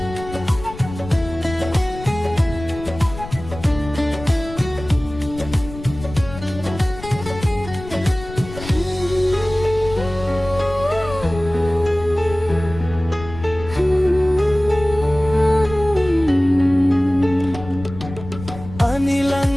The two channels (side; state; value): left; noise; rumble, 13 dB below the sound